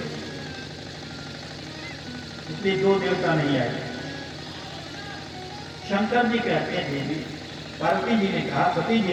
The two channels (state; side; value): identical; both; correlation 1.00